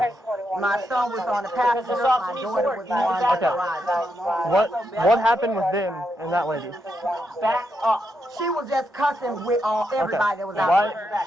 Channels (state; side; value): normal; both; correlation 0.82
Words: My son was on the passenger. My daughter was on the Okay. garage. What happened with them and that lady? Back up. She was just cussing with everybody that was out there.